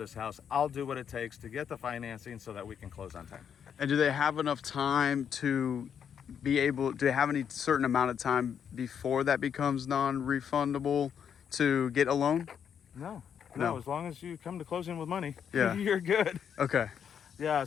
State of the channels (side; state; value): right; quieter; 7.9 dB